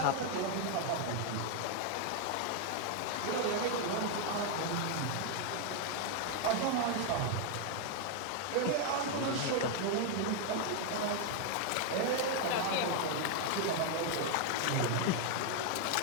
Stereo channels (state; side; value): different; both; correlation 0.00